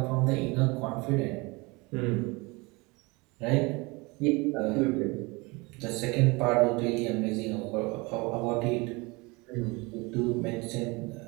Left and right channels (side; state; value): left; quieter; 25.9 dB